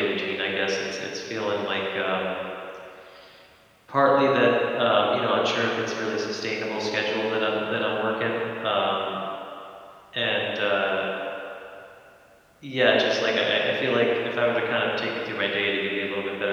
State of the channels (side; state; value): both; identical; correlation 1.00